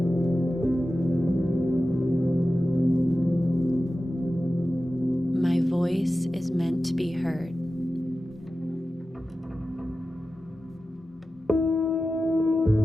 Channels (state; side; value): normal; both; correlation 0.94